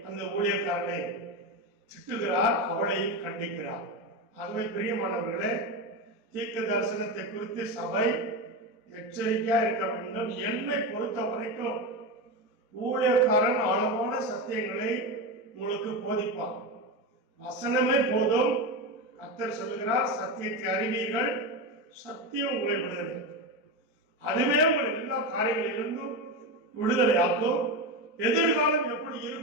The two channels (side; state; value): left; late; 4.6 ms